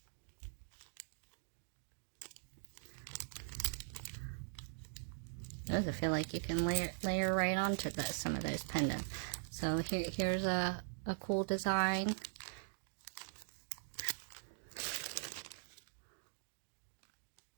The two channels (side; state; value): left; silent; digital silence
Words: Those I feel like you can layer right onto some of those pendants. So here's a cool design.